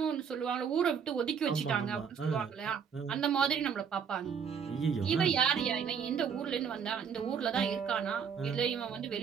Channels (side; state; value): left; quieter; 7.0 dB